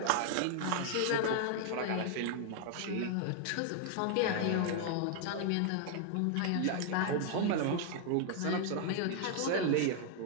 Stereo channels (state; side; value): different; both; correlation 0.00